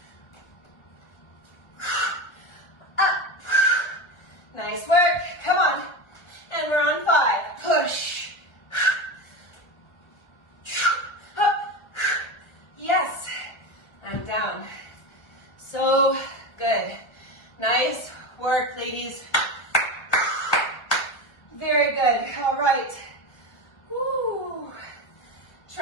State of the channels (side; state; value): right; late; 1.3 ms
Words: Up. Nice work. Come on. And we're on 5. Push. Up. Yes. And down. So good. Nice work, ladies. Very good. All right. Woo.